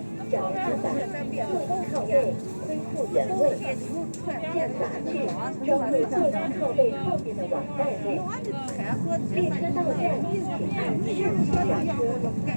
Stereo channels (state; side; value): inverted; both; correlation -1.00